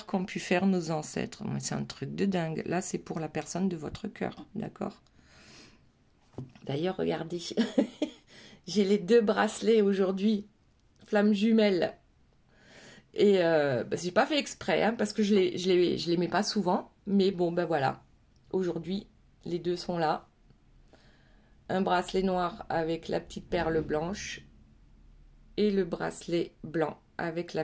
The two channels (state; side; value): identical; both; correlation 1.00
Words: qu'ont pu faire nos ancêtres. C'est un truc de dingue. Là, c'est pour la personne de votre cœur, d'accord? D'ailleurs, regardez, j'ai les 2 bracelets aujourd'hui, flammes jumelles. Et j'ai pas fait exprès, hein, parce que je les mets pas souvent. Mais bon, ben voilà. Aujourd'hui, les 2 sont là. Un bracelet noir avec la petite perle blanche. Et le bracelet blanc avec